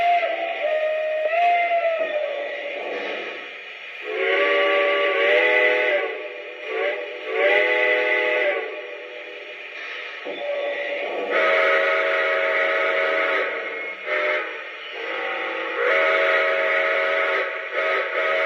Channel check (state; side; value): identical; both; correlation 1.00